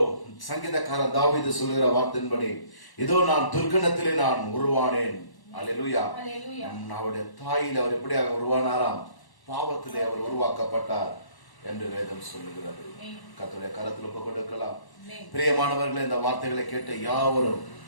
சங்கீதக்காரர் தாவீது சொல்கிற வார்த்தையின்படி இதோ நான் துர்க்கணத்திலே நான் உருவானேன். அல்லேலூயா. Hallelujah. அவருடைய தாயில அவர் எப்படி உருவானாராம்? பாவத்திலே அவர் உருவாக்கப்பட்டார் என்று வேதம் சொல்லுகிறது. Amen. கர்த்தருடைய கரத்தில் ஒப்பு கொடுக்கலாம். Amen. பிரியமானவர்களே, இந்த வார்த்தைகளை கேட்ட யாவரும்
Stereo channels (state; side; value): late; right; 1.1 ms